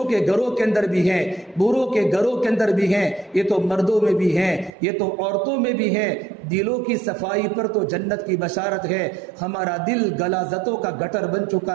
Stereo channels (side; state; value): left; drops out; at 4.7 s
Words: کے گھروں کے اندر بھی ہیں، بروں کے گھروں کے اندر بھی ہیں، یہ تو مردوں میں بھی ہیں، یہ تو عورتوں میں بھی ہیں۔ دلوں کی صفائی پر تو جنت کی بشارت ہے۔ ہمارا دل غلاظتوں کا گٹر بن